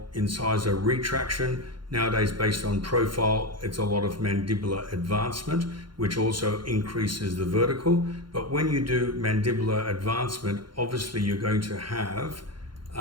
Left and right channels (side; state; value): left; late; 0.72 ms